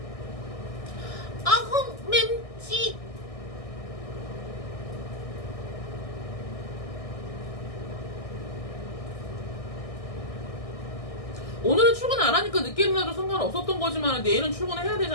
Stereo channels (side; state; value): right; late; 1.6 ms